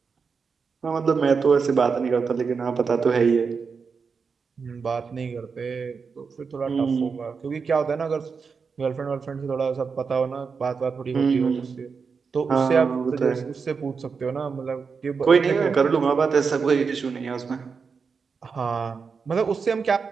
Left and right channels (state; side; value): quieter; left; 5.4 dB